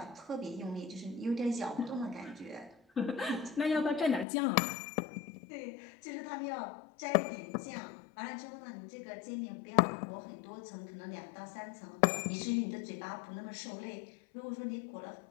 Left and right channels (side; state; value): right; drops out; at 4.2 s